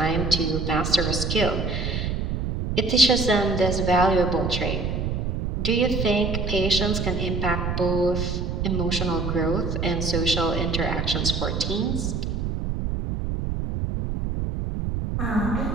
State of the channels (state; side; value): noise; right; rumble, 1 dB below the sound